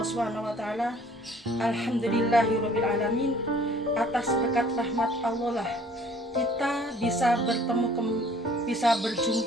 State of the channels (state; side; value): normal; both; correlation 0.55